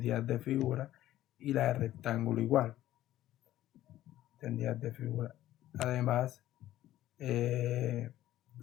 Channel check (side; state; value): right; quieter; 13.9 dB